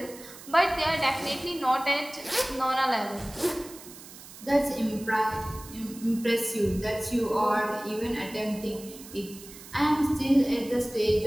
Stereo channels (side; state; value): right; noise; hiss, 17 dB below the sound